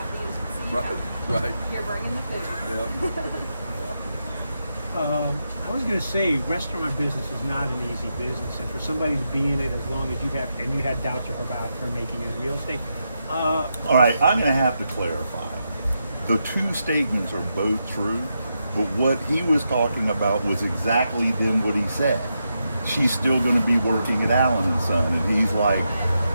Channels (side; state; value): both; inverted; correlation -0.85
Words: As you see, Right. you're bringing the food. Yeah. I was going to say, restaurant business is not an easy business, and for somebody to be in it as long as you have, and you had doubts about her making it real estate. All right, I'm going to have to clarify. The 2 statements are both true, but what he was talking about was exactly then what he said. She's still going to be working at Allen & Son, and he's like,